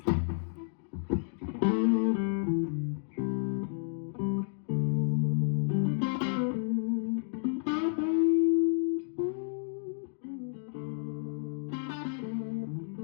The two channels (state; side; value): silent; right; digital silence